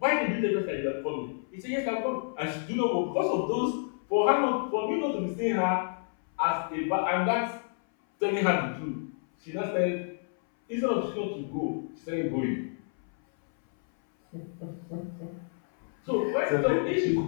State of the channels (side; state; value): right; silent; 58 dB below the other